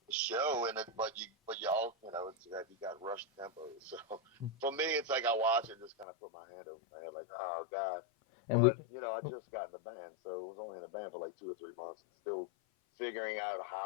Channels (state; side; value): drops out; right; at 6.1 s